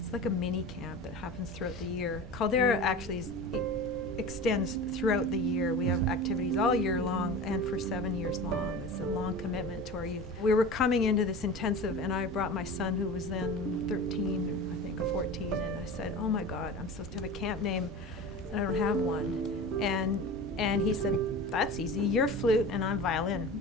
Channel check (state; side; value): normal; both; correlation 0.33